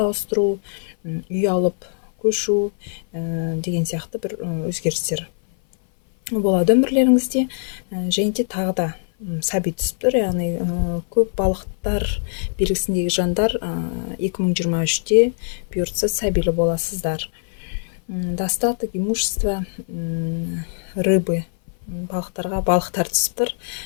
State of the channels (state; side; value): silent; right; 57 dB below the other